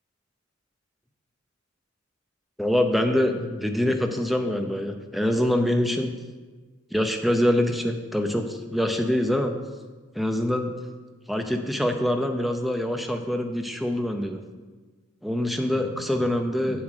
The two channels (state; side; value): normal; both; correlation 0.87